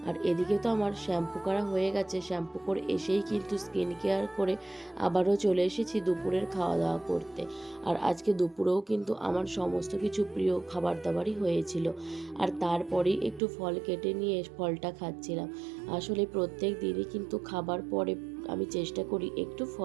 আর এদিকে তো আমার শ্যাম্পু করা হয়ে গেছে, শ্যাম্পু করে এসেই কিন্তু স্কিন কেয়ার করে আবারও চলে এসেছি দুপুরের খাওয়া দাওয়া করতে। আর আজকে দুপুরেও কিন্তু আমার সমস্ত কিছু প্রিয় খাবার দাবারই হয়েছিল। আর তারপরেই একটু ফল কেটে নিয়ে ফলটা খাচ্ছিলাম। আসলে প্রত্যেক দিনই কিন্তু খাবার পরে আমি চেষ্টা করি একটু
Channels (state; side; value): drops out; left; at 13.4 s